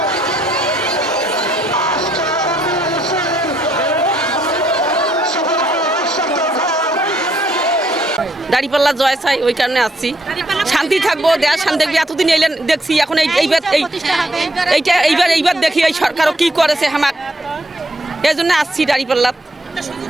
দাঁড়িপাল্লা জয় চাই, ওই কারণে আসছি। শান্তি থাকবো, দেশ শান্তি থাকবে। এতদিন এলেন দেখছি, এখন এইবার দেখি এই সরকারও কি করেছে আমার, এই জন্য আসছি দাঁড়িপাল্লা।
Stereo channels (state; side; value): normal; both; correlation 0.70